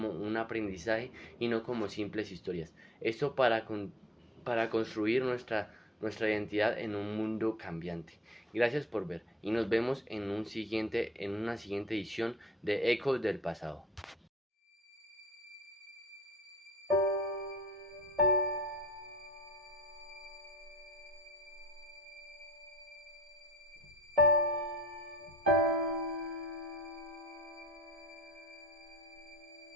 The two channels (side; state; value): both; normal; correlation 0.49